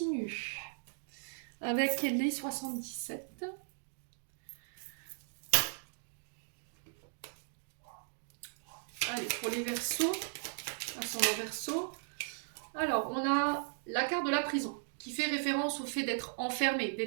avec les 77. Allez, pour les Verseaux, ascendant Verseau. Alors, on a la carte de la prison qui fait référence au fait d'être enfermé,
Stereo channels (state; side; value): silent; left; digital silence